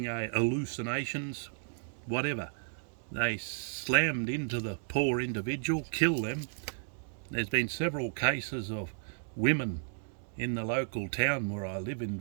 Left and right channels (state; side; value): silent; left; digital silence